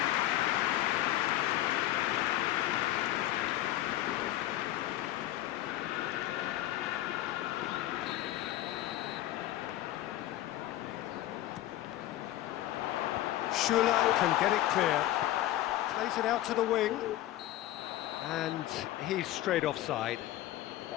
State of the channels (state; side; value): quieter; right; 14.5 dB